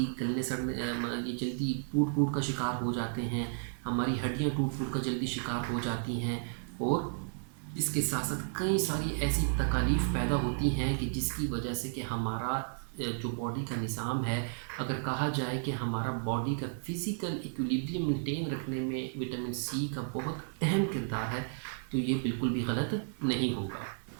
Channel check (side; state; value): left; silent; digital silence